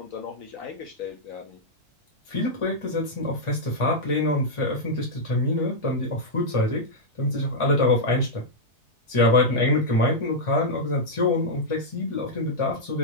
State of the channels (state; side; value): normal; both; correlation -0.06